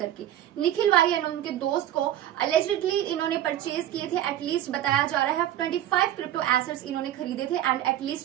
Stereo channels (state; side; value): quieter; left; 12.4 dB